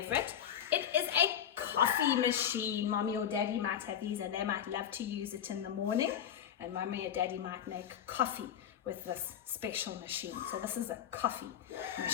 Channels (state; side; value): quieter; right; 9.4 dB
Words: It is a coffee machine. Mommy or Daddy might have these and they might love to use it in the morning, and Mommy or Daddy might make coffee with this special machine. So this is a coffee